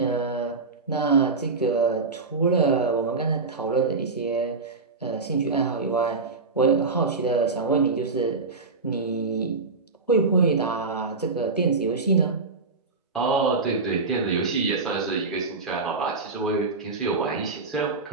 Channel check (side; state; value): left; quieter; 4.0 dB